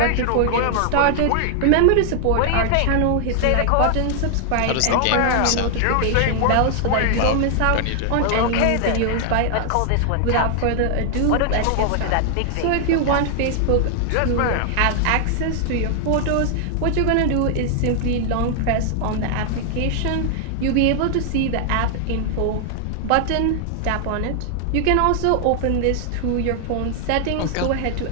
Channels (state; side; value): different; both; correlation 0.00